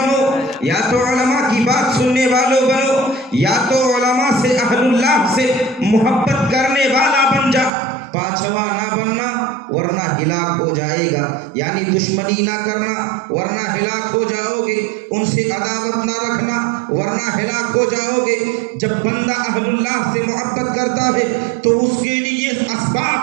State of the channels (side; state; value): left; drops out; at 7.7 s